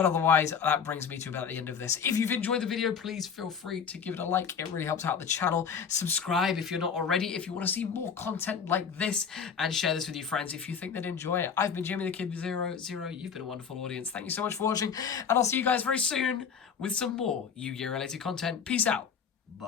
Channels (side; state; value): right; quieter; 6.7 dB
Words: otherwise, that brings me to about the end of this. If you've enjoyed the video, please feel free to give it a like. It really helps out the channel. Subscribe if you're not already, if you want to see more content like this, and share this with your friends if you think they'd enjoy it. I've been Jimmy the Kid 00. You've been a wonderful audience. Thank you so much for watching, and I'll see you guys very soon with some more Yu-Gi-Oh! Related content. Peace out.